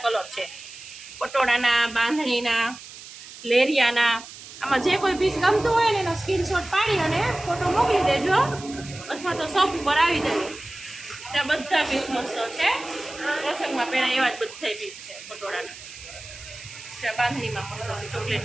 કલર છે, પટોળાના, બાંધણીના, લેરિયાના. આમાં જે કોઈ પીસ ગમતું હોય ને એનો સ્ક્રીનશોટ પાડી અને ફોટો મોકલી દેજો અથવા તો શોપ ઉપર આવી દેજો. ત્યાં બધા પીસ મસ્ત છે. પ્રસંગમાં પહેરાય એવા જ બધા પીસ છે પટોળાના. બાંધણીમાં મસ્ત છે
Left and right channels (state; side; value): noise; right; hiss, 15 dB below the sound